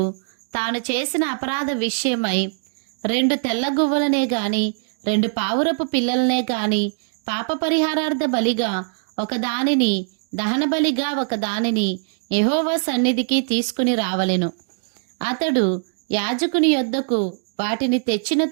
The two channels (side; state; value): left; silent; digital silence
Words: తాను చేసిన అపరాధ విషయమై 2 తెల్ల గువ్వలనే గాని 2 పావురపు పిల్లలనే గాని పాప పరిహారార్థ బలిగా ఒకదానిని దహన బలిగా ఒకదానిని యెహోవా సన్నిధికి తీసుకుని రావలెను. అతడు యాజకుని యొద్దకు వాటిని తెచ్చిన